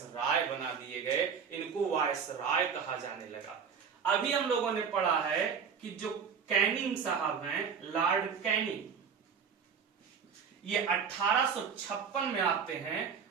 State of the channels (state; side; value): quieter; left; 6.5 dB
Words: बना दिए गए। इनको वायसराय कहा जाने लगा। अभी हम लोगों ने पढ़ा है कि जो कैनिंग साहब हैं, लॉर्ड कैनिंग, ये 1856 में आते हैं,